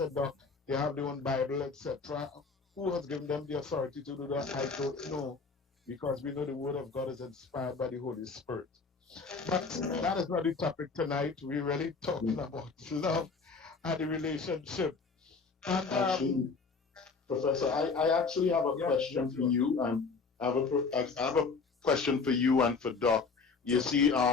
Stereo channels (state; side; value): quieter; right; 4.7 dB